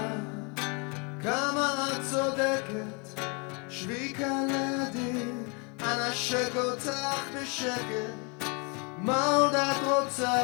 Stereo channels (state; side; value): quieter; right; 32.8 dB